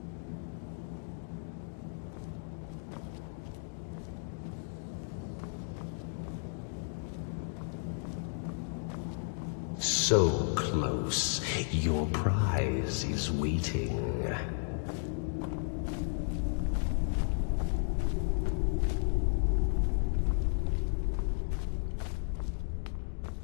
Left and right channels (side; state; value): right; silent; digital silence